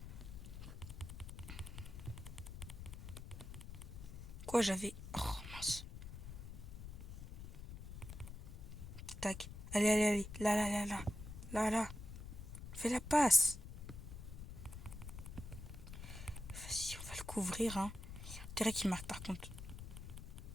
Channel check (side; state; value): left; noise; rumble, 10 dB below the sound